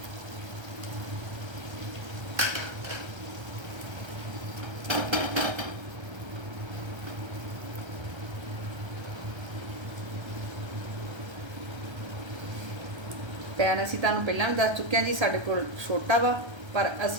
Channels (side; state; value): left; late; 1.3 ms